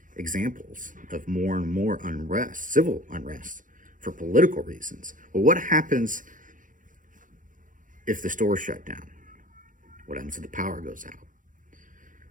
examples of more and more unrest, civil unrest, for political reasons. Well, what happens if the stores shut down? What happens if the power goes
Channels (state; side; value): late; left; 0.38 ms